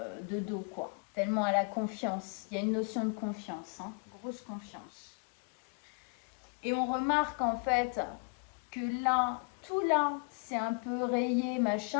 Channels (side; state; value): right; quieter; 37.6 dB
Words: de dos, quoi. Tellement elle a confiance. Il y a une notion de confiance, hein, grosse confiance. Et on remarque en fait que là, tout là, c'est un peu rayé,